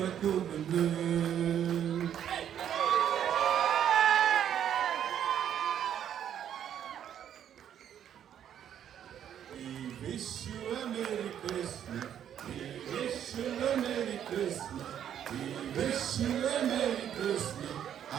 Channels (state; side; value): quieter; left; 9.7 dB